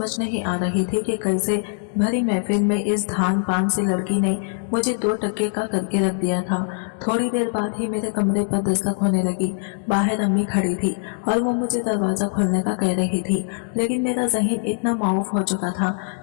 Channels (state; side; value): silent; right; digital silence